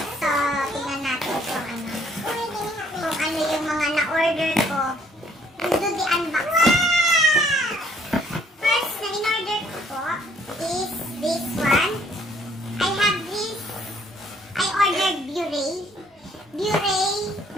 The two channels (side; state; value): both; normal; correlation 0.63